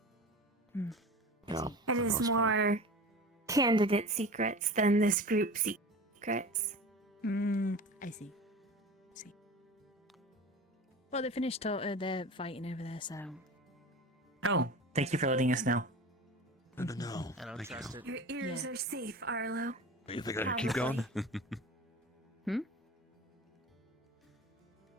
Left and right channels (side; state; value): both; normal; correlation 0.34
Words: Yeah. It is more candidate secrets than this group secrets. I see. Well, they finished they're fighting over there, so. Oh, thank you for letting us know. No. I don't trust it. Your ears are safe, Arlo. You think I can keep going?